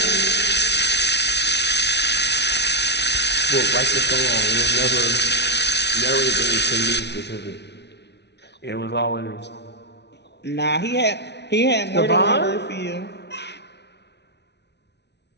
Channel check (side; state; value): right; late; 0.50 ms